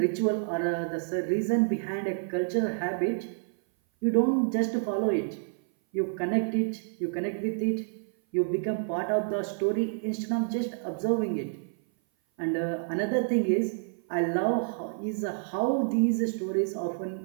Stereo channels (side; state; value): left; silent; 56 dB below the other